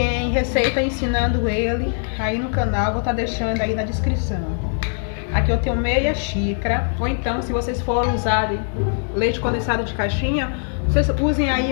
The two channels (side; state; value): right; silent; 63 dB below the other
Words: receita ensinando ele aí no canal, vou estar deixando aí na descrição. Aqui eu tenho meia xícara, ou então se vocês forem usarem leite condensado de caixinha, vocês usem